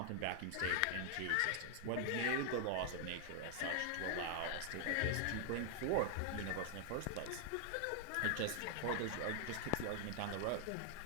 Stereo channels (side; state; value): both; different; correlation 0.00